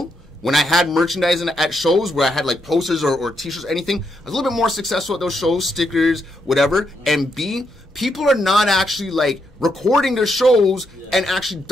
When I had merchandising at shows where I had like posters or t-shirts or anything, I was a little bit more successful at those shows, stickers, whatever. And B, people are not actually like recording their shows and actually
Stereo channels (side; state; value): both; normal; correlation 0.80